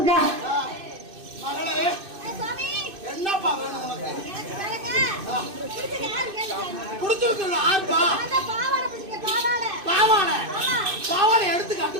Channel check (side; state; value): left; late; 2.6 ms